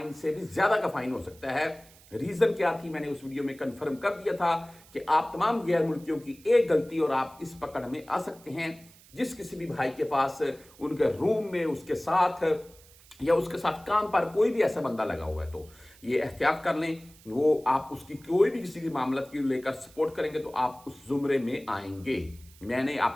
से भी ज्यादा का फाइन हो सकता है। रीजन क्या थी, मैंने उस वीडियो में कंफर्म कर दिया था कि आप तमाम गैर मुल्कियों की एक गलती और आप इस पकड़ में आ सकते हैं। जिस किसी भी भाई के पास उनके रूम में, उसके साथ या उसके साथ काम पर कोई भी ऐसा बंदा लगा हुआ है, तो ये एहतियात कर लें। वो आप उसकी कोई भी किसी की मामला की लेकर सपोर्ट करेंगे तो आप उस जुमरे में आएंगे। मैंने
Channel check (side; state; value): right; noise; hiss, 25 dB below the sound